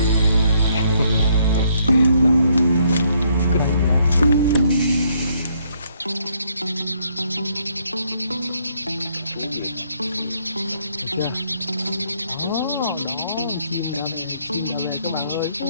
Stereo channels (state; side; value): inverted; both; correlation -0.70